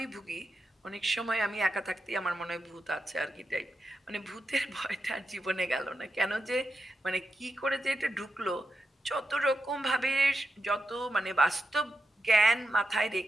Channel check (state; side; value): normal; both; correlation 0.87